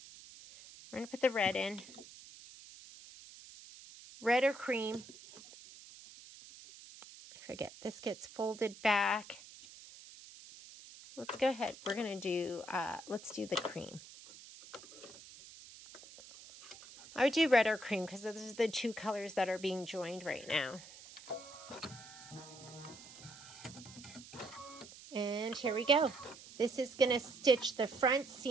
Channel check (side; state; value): right; noise; hiss, 17 dB below the sound